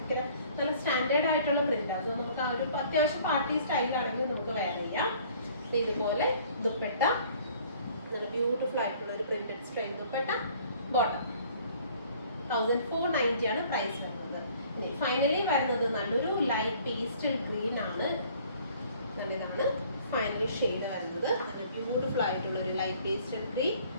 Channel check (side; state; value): both; inverted; correlation -0.55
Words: നല്ല സ്റ്റാൻഡേർഡ് ആയിട്ടുള്ള പ്രിന്റാണ്. സോ നമുക്ക് ആ ഒരു അത്യാവശ്യം പാർട്ടി സ്റ്റൈലാണെങ്കിൽ നമുക്ക് വെയർ ചെയ്യാം. ഇതുപോലെ ദുപ്പട്ട, നല്ല ബ്യൂട്ടിഫുൾ ആയിട്ടുള്ള ഒരു പ്രിന്റഡ് സ്റ്റൈൽ ദുപ്പട്ട. ബോട്ടം 1490 ആണ് പ്രൈസ് വരുന്നത്. ഇനി ഫൈനലി വരുന്നത് നല്ലൊരു ലൈറ്റ് പേസ്റ്റൽ ഗ്രീൻ ആണ്. ഇതാണ് ഫൈനൽ ഷെയ്ഡ് വരുന്നത്. നല്ല ബ്യൂട്ടിഫുൾ ആയിട്ടുള്ള ഒരു ലൈറ്റ് പേസ്റ്റൽ ഗ്രീൻ